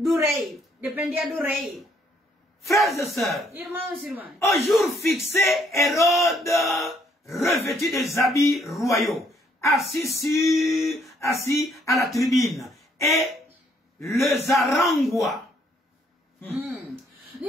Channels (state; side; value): normal; both; correlation 0.68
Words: rei. Dependia do rei. Frères et sœurs, Irmãos e irmãs, au jour fixé, Hérode, revêtu des habits royaux, assis à la tribune, et le zarangua.